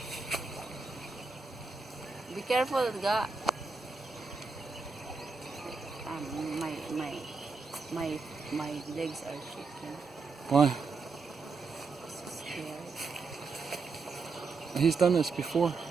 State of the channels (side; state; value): left; quieter; 4.4 dB